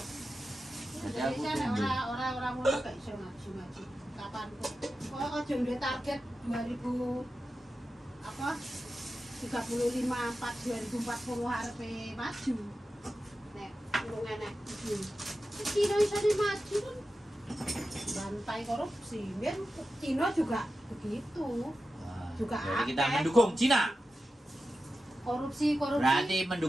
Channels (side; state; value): both; normal; correlation 0.92